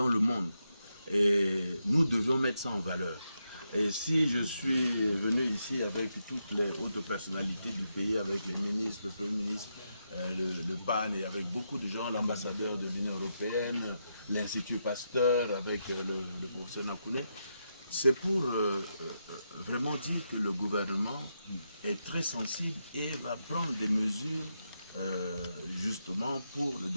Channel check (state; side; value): inverted; both; correlation -0.84